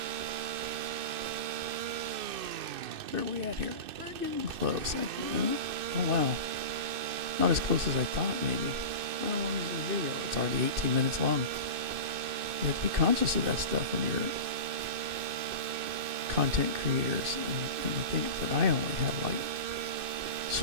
Where are we at here? We're getting close. Oh wow. Not as close as I thought maybe. How long is this video? It's already 18 minutes long. You have to be conscious of that stuff when you're content creators. And the thing that I only have like,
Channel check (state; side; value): late; left; 2.6 ms